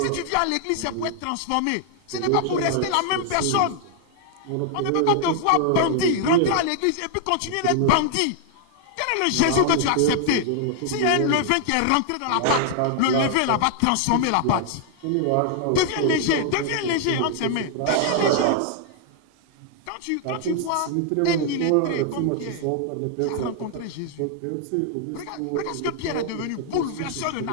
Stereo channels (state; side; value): different; both; correlation 0.00